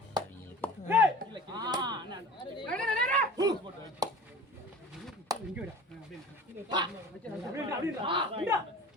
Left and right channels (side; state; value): both; normal; correlation 0.40